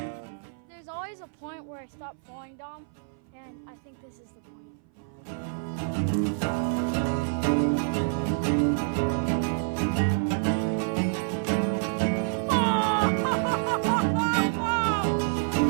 A point where I stop falling, Dom, and I think this is the point.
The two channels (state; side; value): silent; left; 57 dB below the other